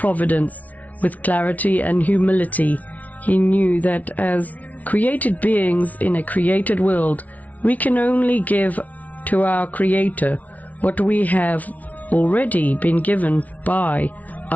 with clarity and humility. He knew that as created beings in a created world, we can only give to our Creator what we have already been given by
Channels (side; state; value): right; late; 0.072 ms